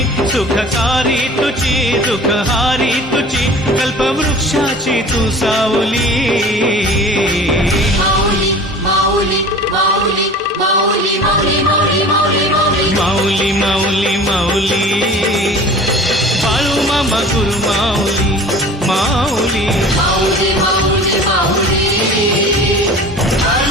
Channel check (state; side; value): normal; both; correlation 0.42